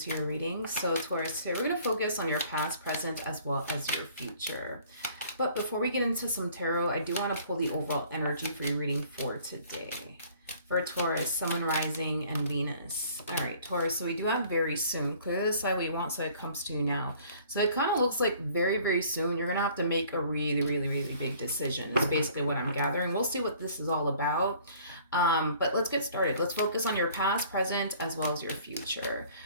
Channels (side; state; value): both; inverted; correlation -0.55